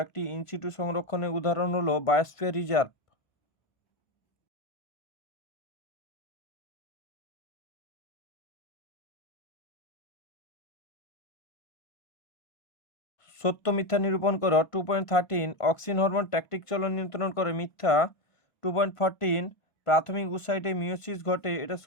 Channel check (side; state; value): right; late; 1.5 ms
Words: একটি ইনসিটু সংরক্ষণের উদাহরণ হলো বায়োস্ফিয়ার রিজার্ভ। সত্য মিথ্যা নিরূপণ করো। 2.13 অক্সিন হরমোন ট্যাকটিক চলন নিয়ন্ত্রণ করে, মিথ্যা। 2.14 প্রাথমিক উসাইটে মিওসিস ঘটে, এটা